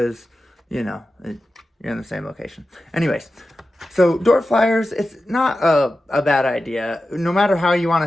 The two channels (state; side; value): normal; both; correlation 0.93